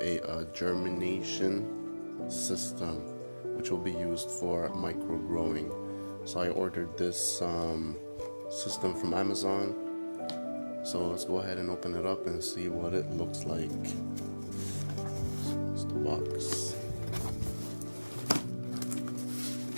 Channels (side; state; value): both; inverted; correlation -1.00